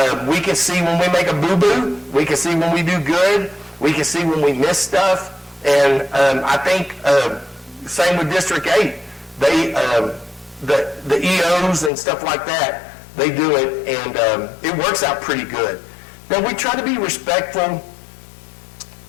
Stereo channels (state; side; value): drops out; right; at 11.9 s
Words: we can see when we make a boo-boo, we can see when we do good, we can see when we miss stuff. And I think same with District 8. They, the EOs and stuff like that, they do it, and it works out pretty good. Now, we try to be respectful.